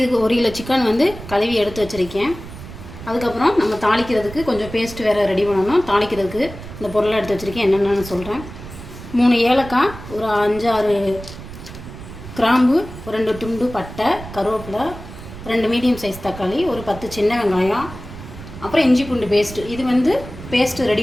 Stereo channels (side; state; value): right; noise; rumble, 13 dB below the sound